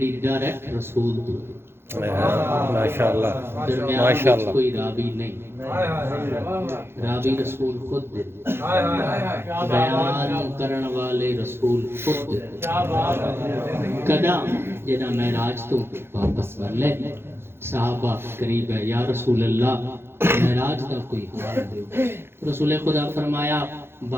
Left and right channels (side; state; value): left; late; 0.11 ms